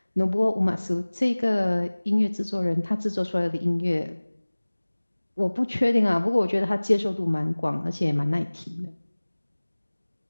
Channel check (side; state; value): both; inverted; correlation -1.00